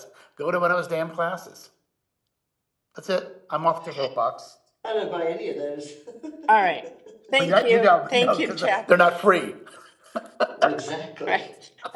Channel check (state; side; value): identical; both; correlation 1.00